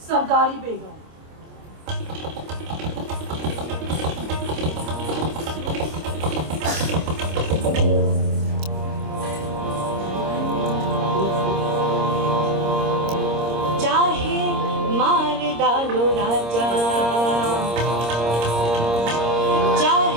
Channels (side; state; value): left; late; 26 ms